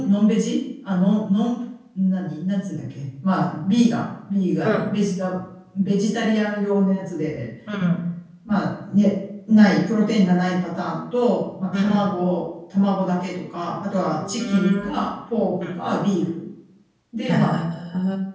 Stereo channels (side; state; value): both; identical; correlation 1.00